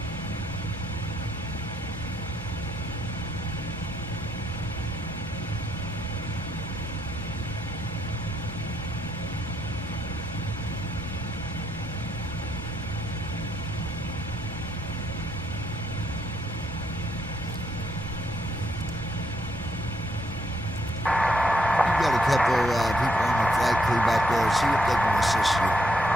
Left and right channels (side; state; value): both; normal; correlation 0.74